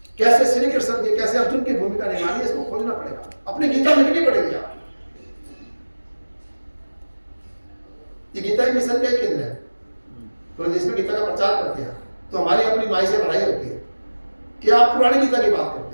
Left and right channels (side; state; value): both; inverted; correlation -1.00